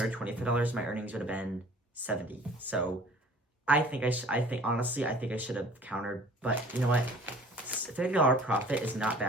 my earnings would have been $70. So honestly, I think I should have countered, but you know what? $30 profit is not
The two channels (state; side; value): normal; both; correlation 0.49